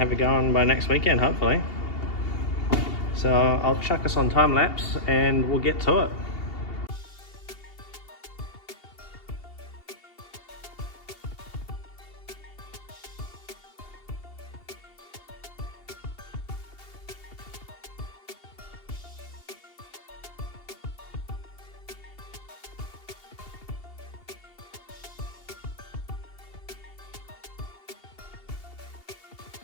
it going by next weekend hopefully. So I'll chuck us on time lapse and we'll get to it.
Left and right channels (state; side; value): late; right; 2.8 ms